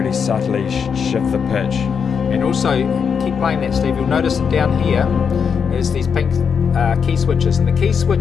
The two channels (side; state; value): right; quieter; 6.6 dB